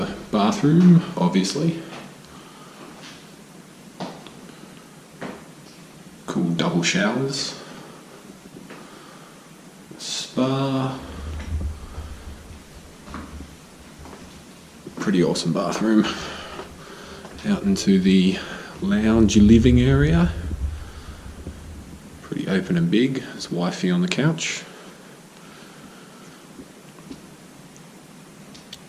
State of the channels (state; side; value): identical; both; correlation 1.00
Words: bathroom, obviously. Cool double showers. Spa. Pretty awesome bathroom. Out into the lounge living area. Pretty open and big. There's wifey on the couch.